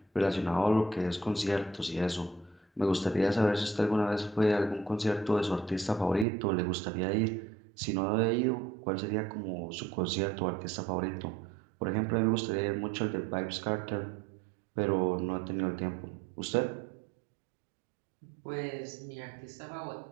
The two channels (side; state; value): left; drops out; at 6.2 s